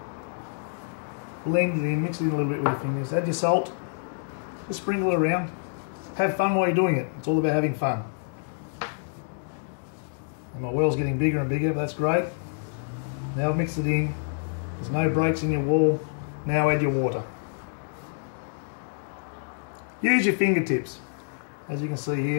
Blend it in, mix it in a little bit with your fingers. Add your salt, just sprinkle it around. Have fun while you're doing it. It's all about having fun. And my well's getting bigger and bigger, but that's great. Now I've mixed it in. There's no breaks in your wall. Now add your water. Use your fingertips. As you can see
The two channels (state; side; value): silent; right; digital silence